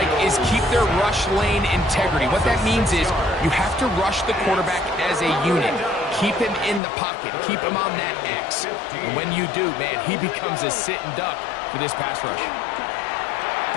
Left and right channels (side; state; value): right; drops out; at 6.8 s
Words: is keep their rush lane integrity. What that means is you have to rush the quarterback as a unit. Keep him in the pocket. Keep him on that X. And when you do, man, he becomes a sitting duck for this pass rush.